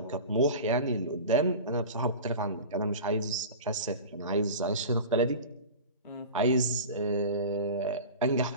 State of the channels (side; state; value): both; inverted; correlation -0.33